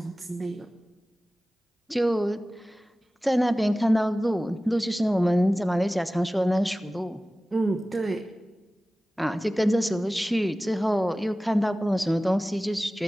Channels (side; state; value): both; normal; correlation 0.97